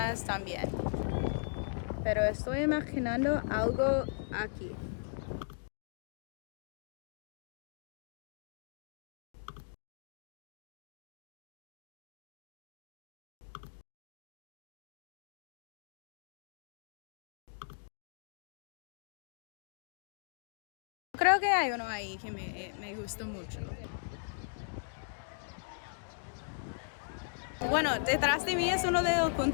también. Pero estoy imaginando algo aquí. Creo que hay uno ahí que me gustó mucho. Bueno, detrás de mí es uno de los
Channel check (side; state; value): right; silent; digital silence